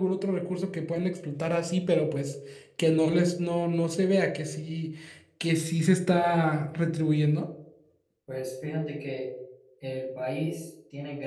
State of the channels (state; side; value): identical; both; correlation 1.00